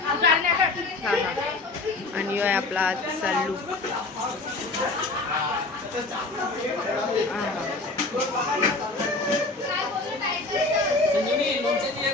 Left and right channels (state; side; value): quieter; right; 3.3 dB